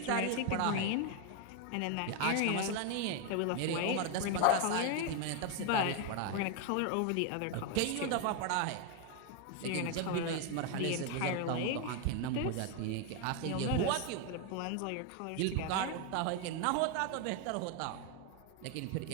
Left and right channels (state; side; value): different; both; correlation 0.01